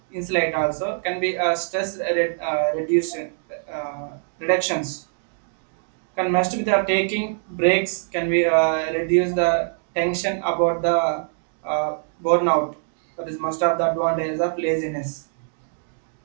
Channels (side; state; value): left; silent; digital silence